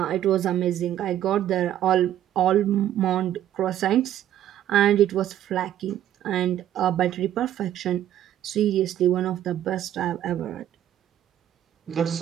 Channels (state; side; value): quieter; left; 11.7 dB